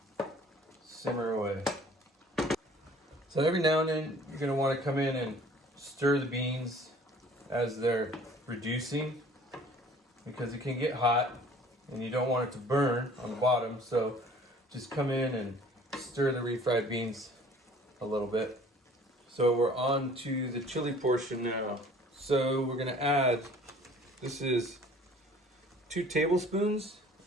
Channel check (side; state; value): both; normal; correlation 0.51